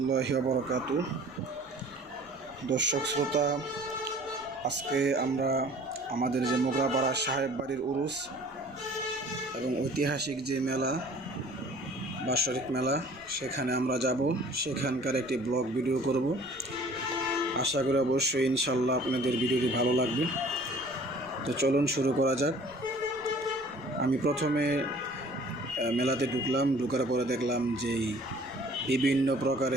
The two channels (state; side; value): noise; left; rumble, 27 dB below the sound